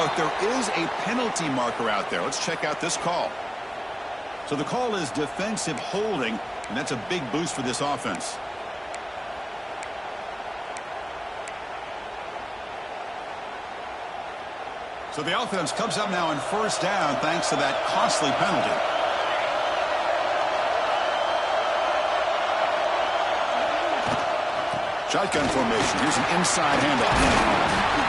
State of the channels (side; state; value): both; identical; correlation 1.00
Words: there is a penalty marker out there. Let's check out this call. So the call is defensive holding, and that's a big boost for this offense. So the offense comes up now in 1st down thanks to that costly penalty. Shotgun formation. Here's an inside handoff.